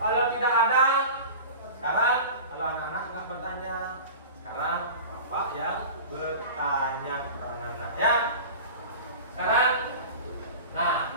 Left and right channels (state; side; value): inverted; both; correlation -0.35